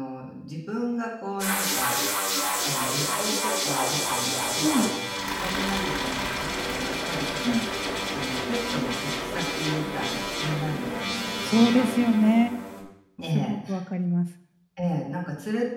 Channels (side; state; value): both; identical; correlation 1.00